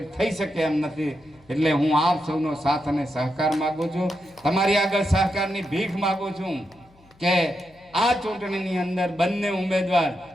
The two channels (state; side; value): noise; left; hum, 29 dB below the sound